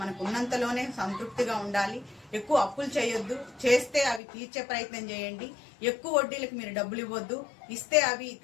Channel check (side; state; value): right; drops out; at 4.2 s